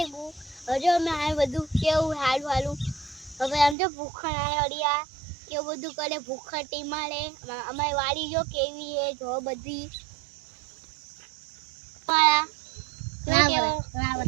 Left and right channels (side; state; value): left; drops out; at 3.8 s